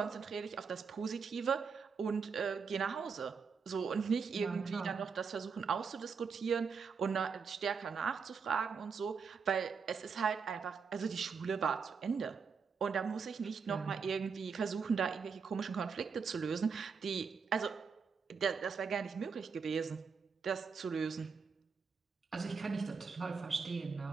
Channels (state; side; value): quieter; left; 5.6 dB